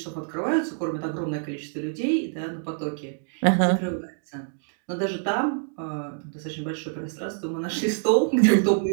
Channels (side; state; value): left; silent; digital silence